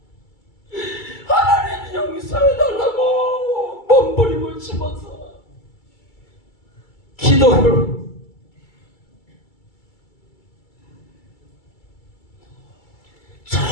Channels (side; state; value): right; late; 2.3 ms